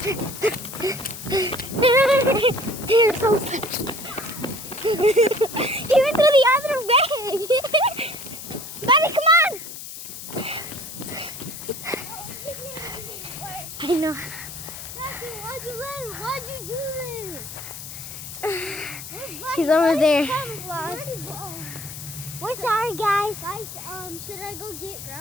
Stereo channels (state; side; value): noise; left; hiss, 11 dB below the sound